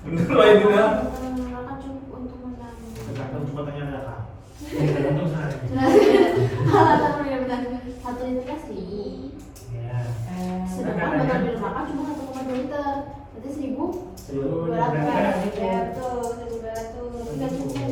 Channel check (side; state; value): both; identical; correlation 1.00